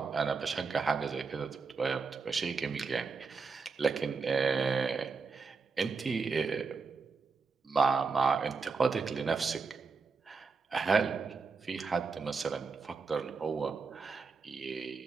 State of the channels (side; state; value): left; quieter; 4.7 dB